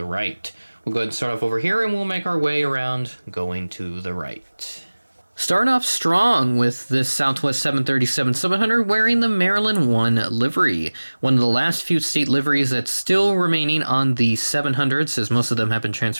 right. We'll go ahead and start off over here and we'll make our way around going to the right. Starting off strong with this Southwest 737-700 wearing the Maryland 1 livery. One of the last few state liveries that's still remaining on the 700s, as most of them have been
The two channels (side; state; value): both; inverted; correlation -1.00